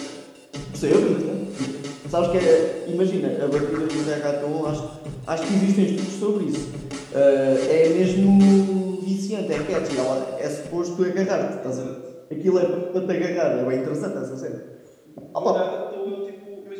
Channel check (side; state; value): both; identical; correlation 1.00